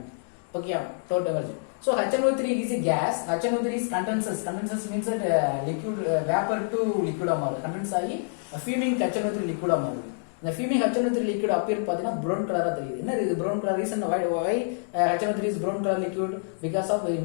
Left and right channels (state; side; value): silent; right; digital silence